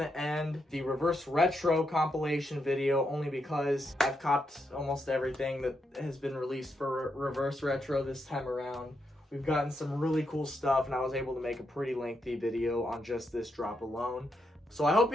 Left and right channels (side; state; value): both; normal; correlation 0.81